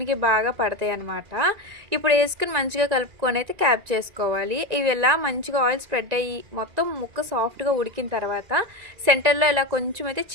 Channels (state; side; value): late; left; 1.9 ms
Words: బాగా పడతాయి అనమాట. ఇప్పుడు వేసుకుని మంచిగా కలుపుకొని అయితే క్యాప్ చేసుకోవాలి. ఇవి ఇలా మంచిగా ఆయిల్ స్ప్రెడ్ అయ్యి మొత్తం ముక్క సాఫ్ట్గా ఉడికిన తర్వాత సెంటర్లో ఇలా కొంచెం అయితే